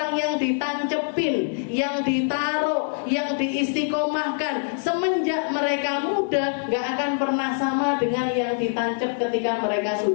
yang ditancepin, yang ditaruh, yang diistiqomahkan semenjak mereka muda, gak akan pernah sama dengan yang ditancep ketika mereka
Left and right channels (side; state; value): right; silent; 62 dB below the other